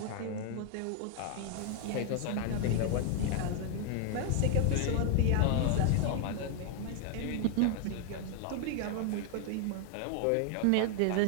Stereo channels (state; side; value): different; both; correlation 0.00